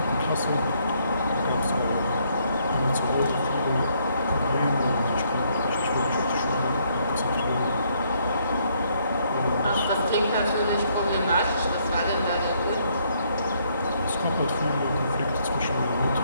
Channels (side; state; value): both; inverted; correlation -0.70